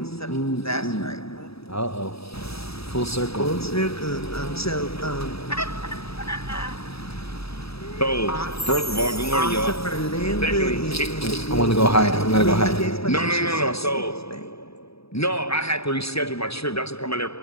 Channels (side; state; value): right; late; 0.77 ms